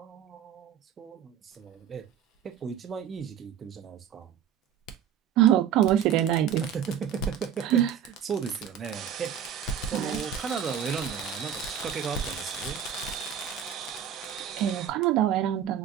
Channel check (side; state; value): left; quieter; 9.1 dB